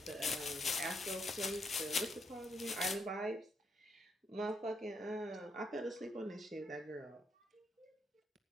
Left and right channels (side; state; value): both; normal; correlation 0.76